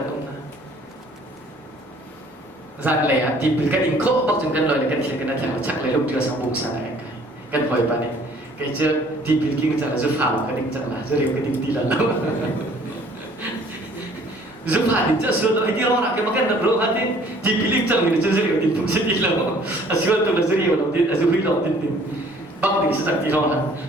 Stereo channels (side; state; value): both; normal; correlation 0.56